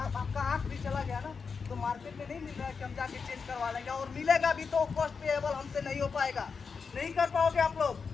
आँख भी चला गया ना तो मार्केट में नहीं मिल रहा है कि हम जाके चेंज करवा लेंगे, और मिलेगा भी तो कॉस्ट पेएबल हमसे नहीं हो पाएगा, नहीं कर पाओगे आप लोग,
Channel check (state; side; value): quieter; right; 5.4 dB